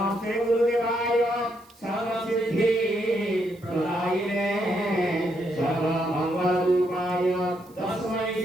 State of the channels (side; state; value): right; noise; hiss, 29 dB below the sound